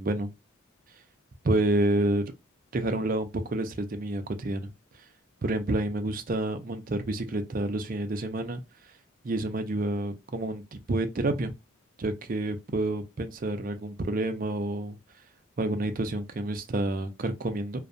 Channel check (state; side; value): normal; both; correlation 0.59